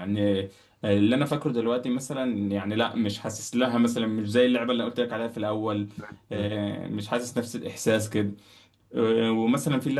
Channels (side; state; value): both; identical; correlation 1.00